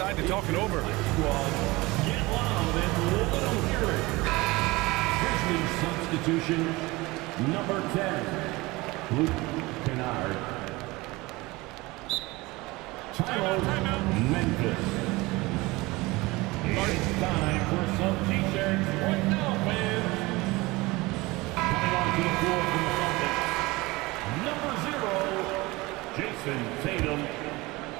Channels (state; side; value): quieter; left; 22.0 dB